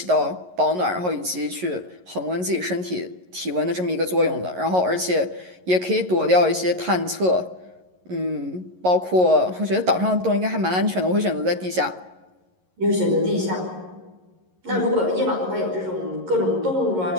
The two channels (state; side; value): late; left; 11 ms